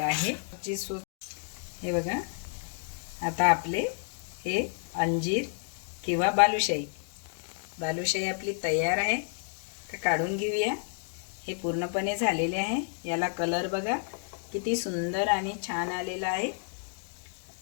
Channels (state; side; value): silent; right; digital silence